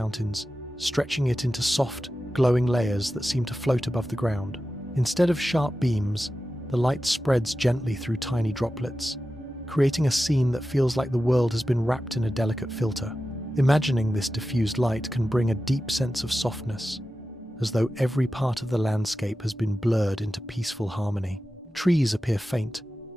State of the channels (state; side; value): normal; both; correlation 0.93